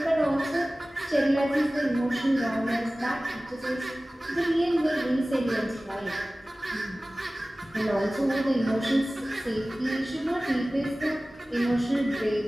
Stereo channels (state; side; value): normal; both; correlation 0.97